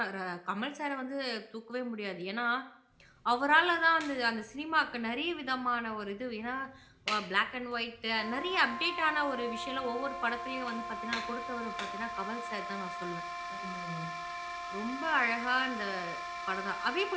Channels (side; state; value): both; identical; correlation 1.00